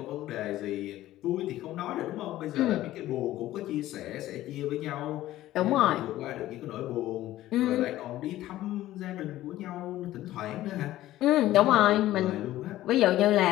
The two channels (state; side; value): quieter; right; 14.8 dB